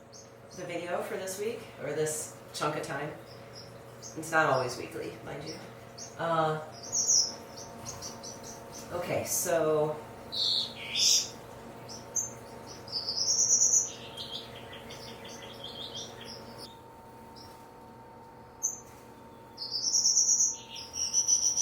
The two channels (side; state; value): both; identical; correlation 1.00